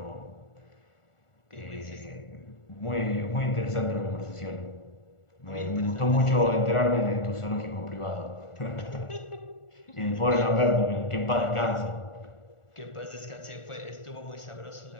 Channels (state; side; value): late; right; 1.4 ms